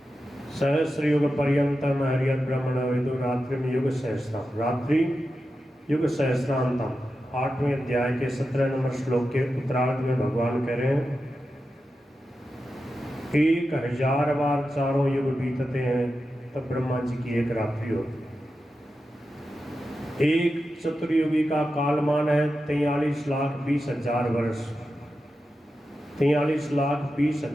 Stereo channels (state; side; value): normal; both; correlation 0.91